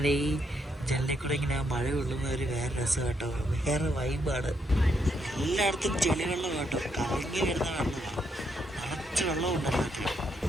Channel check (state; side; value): normal; both; correlation 0.77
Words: ഈ ജനലിൽ കൂടെ ഇങ്ങനെ ആ മഴ കൊള്ളുന്ന ഒരു വേറെ രസം കേട്ടോ. വേറെ വൈബാണ്. എല്ലായിടത്തും ചെളി വെള്ളം കേട്ടോ. കലങ്ങി വരുന്ന വെള്ളമാണ്. നിറച്ച് വെള്ളം ഉണ്ടല്ലോ.